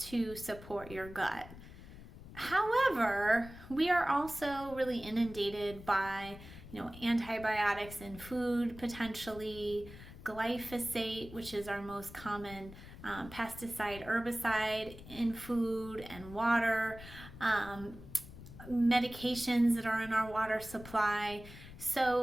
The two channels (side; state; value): left; noise; rumble, 15 dB below the sound